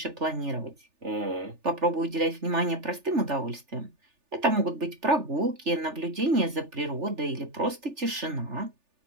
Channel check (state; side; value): late; left; 3.4 ms